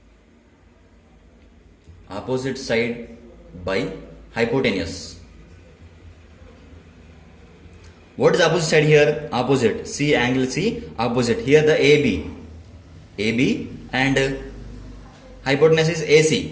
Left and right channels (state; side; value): identical; both; correlation 1.00